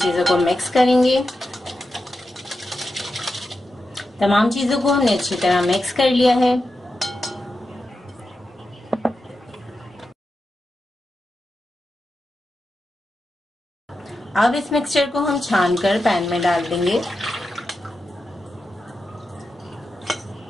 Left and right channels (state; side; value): normal; both; correlation 0.90